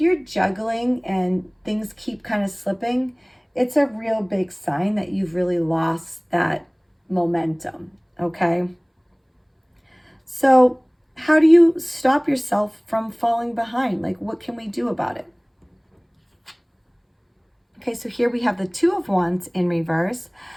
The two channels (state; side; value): identical; both; correlation 1.00